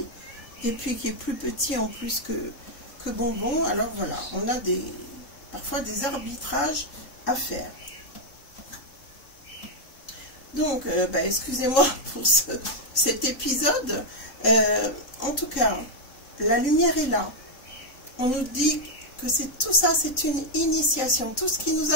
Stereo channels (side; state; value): right; late; 3.8 ms